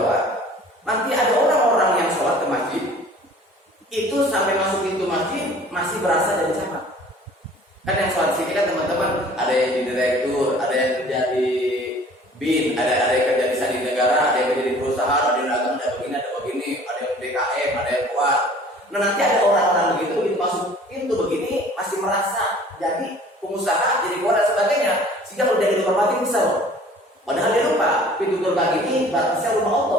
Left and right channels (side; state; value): both; normal; correlation 0.50